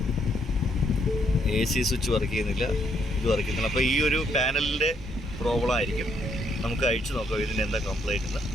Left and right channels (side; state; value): both; normal; correlation 0.72